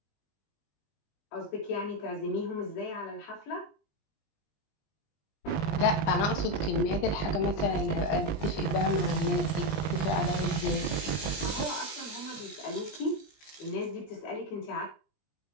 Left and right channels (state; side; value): late; right; 20 ms